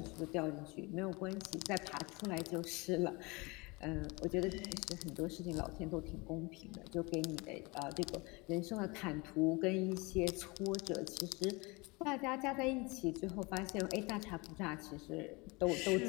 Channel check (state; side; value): quieter; right; 26.0 dB